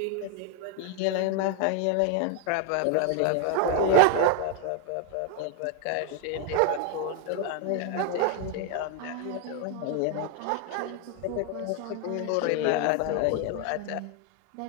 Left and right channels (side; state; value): both; different; correlation 0.01